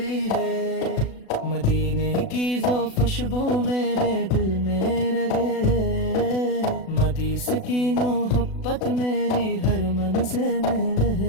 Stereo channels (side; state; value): right; late; 36 ms